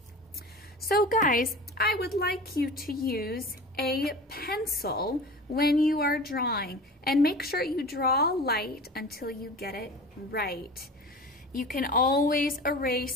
So guys, I would like you to use a pencil when you are drawing, and make sure you draw light until you get it right. You can always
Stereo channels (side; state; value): both; normal; correlation 0.36